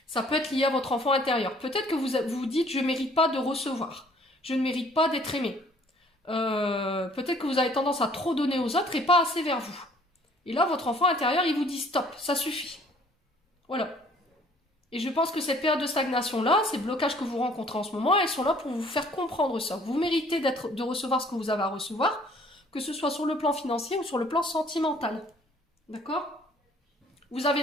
Ça peut être lié à votre enfant intérieur. Peut-être que vous vous dites, je ne mérite pas de recevoir. Je ne mérite pas d'être aimé. Peut-être que vous avez tendance à trop donner aux autres et pas assez vers vous. Et là, votre enfant intérieur, il vous dit stop, ça suffit. Voilà. Et je pense que cette période de stagnation-là, ces blocages que vous rencontrez en ce moment, elles sont là pour vous faire comprendre ça. Vous méritez de recevoir ce que vous avez à recevoir, que ce soit sur le plan financier ou sur le plan sentimental. D'accord ? Vous avez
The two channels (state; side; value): normal; both; correlation 0.58